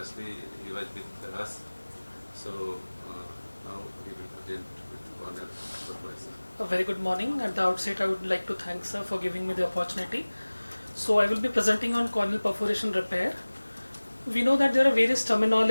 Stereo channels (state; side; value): inverted; both; correlation -1.00